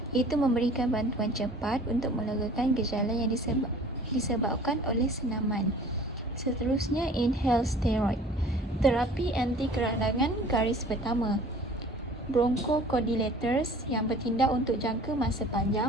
iaitu memberikan bantuan cepat untuk melegakan gejala yang disebabkan oleh senaman. Seterusnya, inhaled steroid. Terapi anti keradangan garis pertama. Bronchodilators yang bertindak untuk jangka masa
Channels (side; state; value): both; normal; correlation 0.47